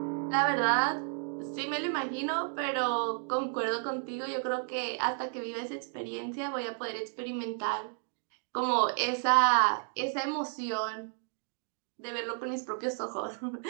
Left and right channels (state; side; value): silent; left; 55 dB below the other